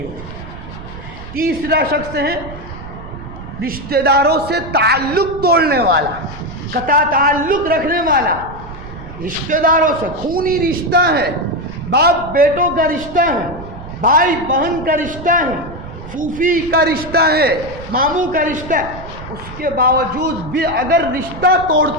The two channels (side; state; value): right; noise; rumble, 13 dB below the sound